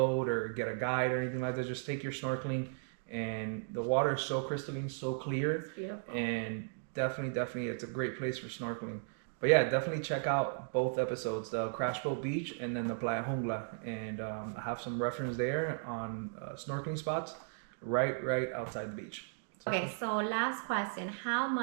or get a guide or anything like that. Just take your snorkeling, and the water is so crystalline, so clear. It's beautiful. And definitely, it's a great place for snorkeling. But yeah, definitely check out both episodes, the Crash Boat Beach and then the Playa Jungla. And I have some reference there on snorkeling spots right outside the beach. Okay, so last question. How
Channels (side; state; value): left; silent; digital silence